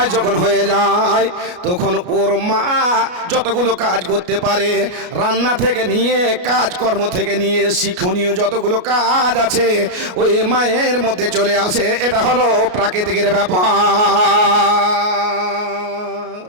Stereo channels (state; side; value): late; left; 33 ms